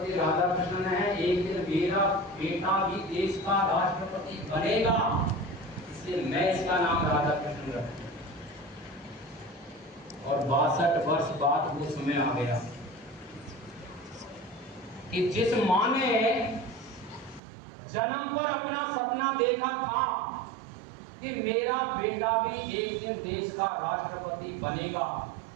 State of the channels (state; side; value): drops out; left; at 17.4 s